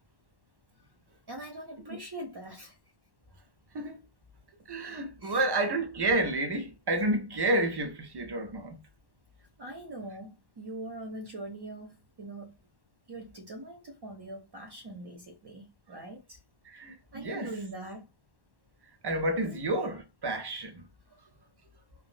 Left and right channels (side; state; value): left; late; 1.1 ms